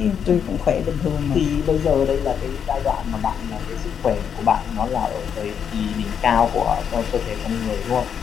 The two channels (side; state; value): right; quieter; 7.8 dB